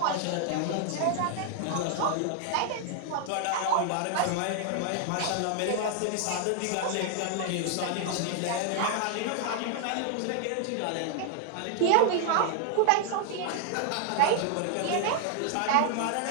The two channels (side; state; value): both; different; correlation 0.00